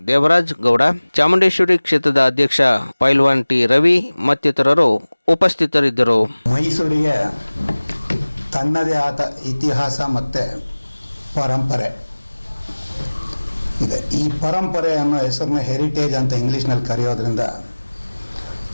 ದೇವರಾಜ್ ಗೌಡ, ಚಾಮುಂಡೇಶ್ವರಿ ಕ್ಷೇತ್ರದ ಅಧ್ಯಕ್ಷ ಪೈಲ್ವಾನ್ ಟಿ ರವಿ ಮತ್ತಿತರರು ಉಪಸ್ಥಿತರಿದ್ದರು. ಮೈಸೂರಿಗೆ ತನ್ನದೇ ಆದ ಇತಿಹಾಸ ಮತ್ತು ಪರಂಪರೆ ಇದೆ. ಈ ಪರಂಪರೆ ಅನ್ನೋ ಹೆಸರನ್ನ ಹೆರಿಟೇಜ್ ಅಂತ ಇಂಗ್ಲೀಷ್ನಲ್ಲಿ ಕರೆಯೋದ್ರಿಂದ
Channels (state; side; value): inverted; both; correlation -1.00